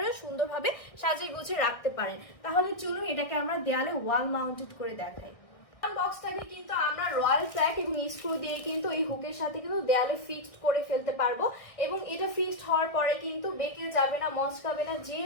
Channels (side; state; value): right; late; 1.6 ms